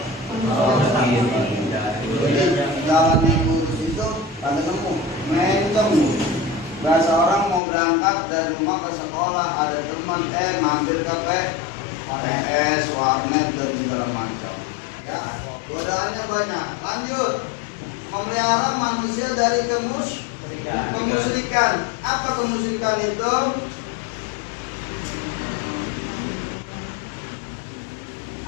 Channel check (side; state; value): right; drops out; at 7.6 s